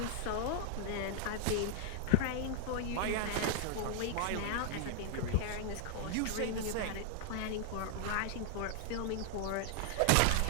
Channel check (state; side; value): different; both; correlation 0.00